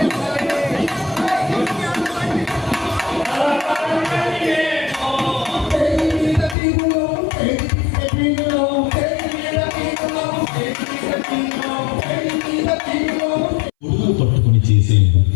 గొడుగులు పట్టుకుని చేసే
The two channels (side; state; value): right; drops out; at 6.6 s